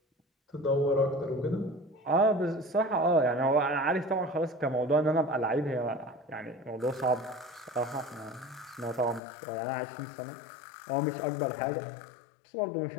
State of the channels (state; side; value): drops out; right; at 9.2 s